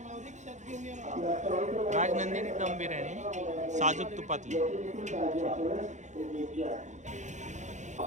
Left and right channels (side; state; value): left; late; 0.35 ms